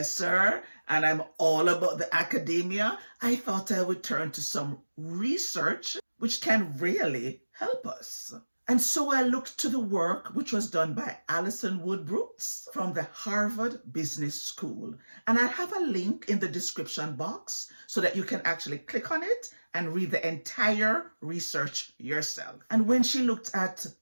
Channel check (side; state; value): both; inverted; correlation -1.00